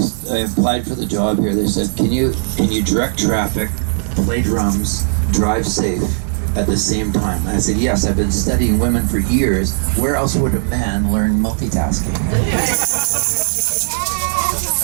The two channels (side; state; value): left; silent; digital silence